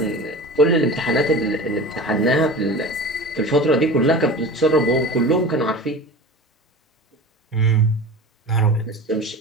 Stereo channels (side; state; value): both; normal; correlation 0.34